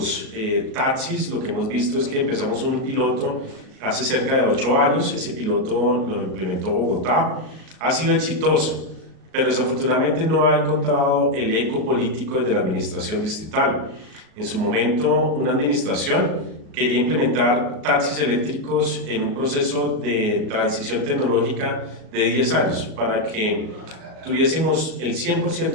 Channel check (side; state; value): left; late; 37 ms